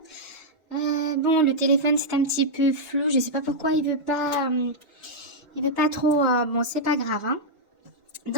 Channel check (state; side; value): normal; both; correlation -0.06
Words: Bon, le téléphone c'est un petit peu flou, je sais pas pourquoi il veut pas trop. Bon, c'est pas grave, hein.